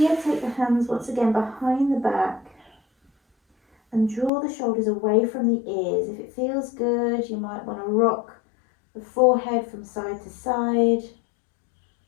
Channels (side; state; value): right; drops out; at 4.3 s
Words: take the hands once again behind the back and draw the shoulders away from the ears. If it feels good, you might want to rock the forehead from side to side.